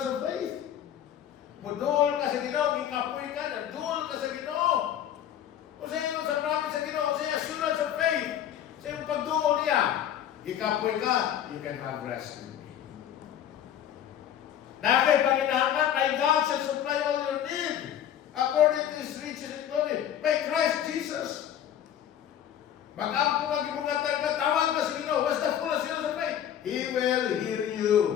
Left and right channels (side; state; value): right; quieter; 10.3 dB